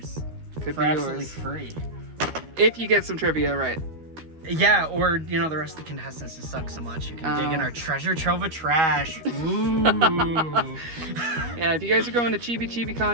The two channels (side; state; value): left; late; 13 ms